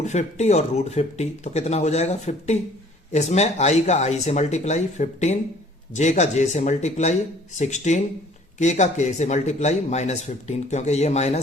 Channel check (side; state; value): both; normal; correlation 0.55